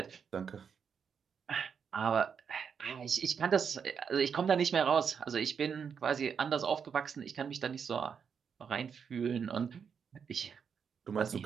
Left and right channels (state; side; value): quieter; left; 6.8 dB